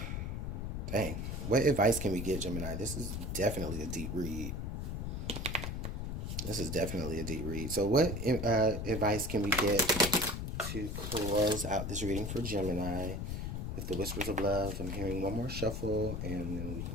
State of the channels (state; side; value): noise; left; rumble, 3 dB below the sound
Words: dang, what advice can we get, Gemini? This is definitely a deep read. So what advice can we get to close out this reading for Gemini with the Whispers of Love? I'm hearing one more shuffle and then we